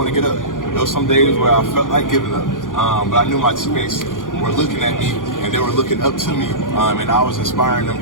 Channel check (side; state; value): right; late; 0.89 ms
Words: to get up. There was some days where I felt like giving up, but I knew my teammates were looking at me and they were looking up to me, and I was inspiring them